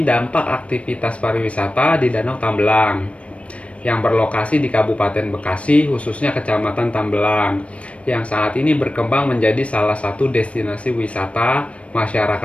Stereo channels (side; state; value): right; late; 0.063 ms